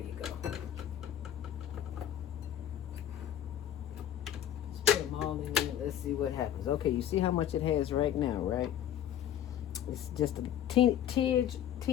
you go. Just put them all in there. Let's see what happens. Okay, you see how much it has right now, right? It's just a teeny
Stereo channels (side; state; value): right; quieter; 10.7 dB